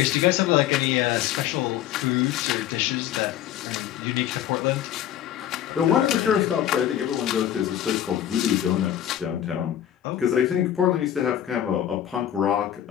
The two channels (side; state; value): right; quieter; 11.2 dB